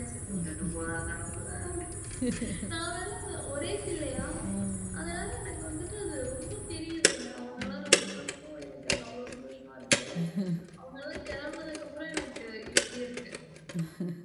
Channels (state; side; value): identical; both; correlation 1.00